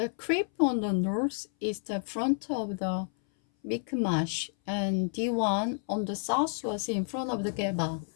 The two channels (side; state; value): right; silent; 58 dB below the other